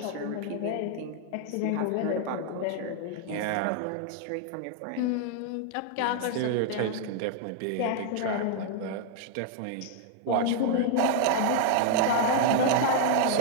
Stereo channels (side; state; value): both; different; correlation -0.01